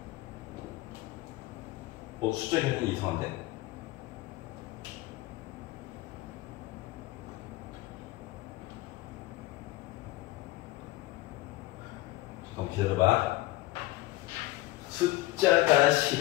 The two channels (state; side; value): quieter; right; 17.7 dB